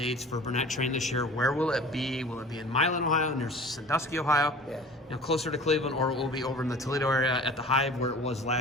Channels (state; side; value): normal; both; correlation 0.42